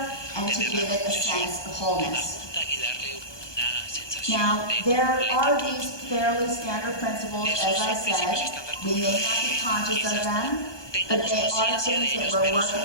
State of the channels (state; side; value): late; right; 1.2 ms